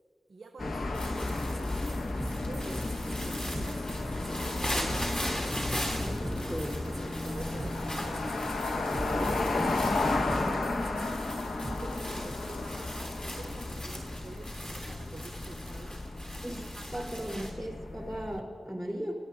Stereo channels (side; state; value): both; normal; correlation 0.92